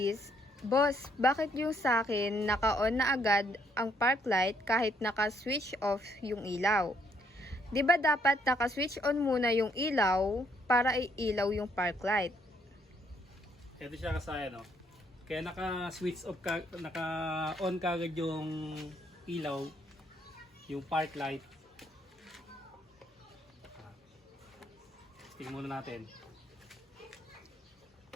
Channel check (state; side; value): normal; both; correlation 0.70